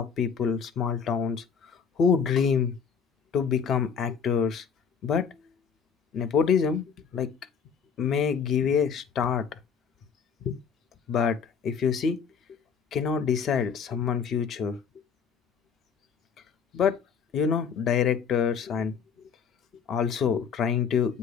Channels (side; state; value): right; quieter; 6.5 dB